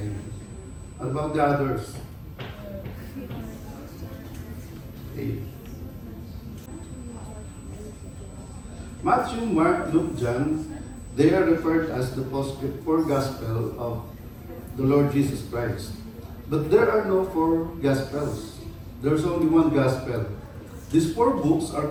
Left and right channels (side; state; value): both; identical; correlation 1.00